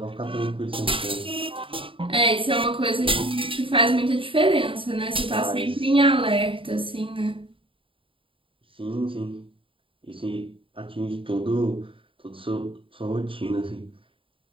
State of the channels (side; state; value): left; late; 0.25 ms